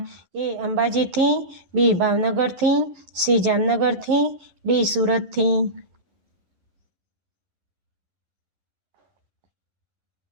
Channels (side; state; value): left; late; 11 ms